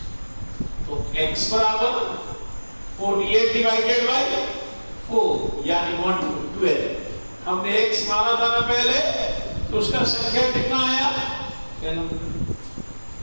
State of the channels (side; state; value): both; inverted; correlation -1.00